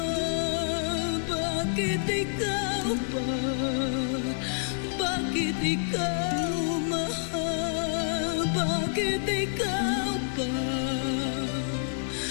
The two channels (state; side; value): silent; right; 59 dB below the other